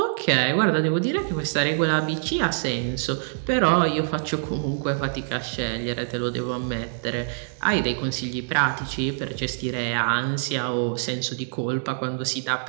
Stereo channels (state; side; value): silent; left; digital silence